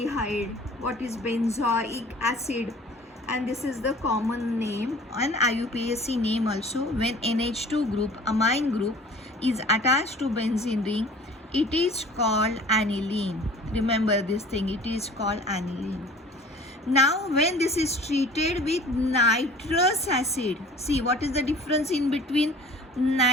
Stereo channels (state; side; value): normal; both; correlation 0.46